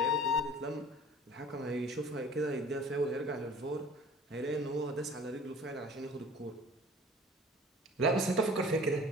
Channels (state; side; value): normal; both; correlation 0.46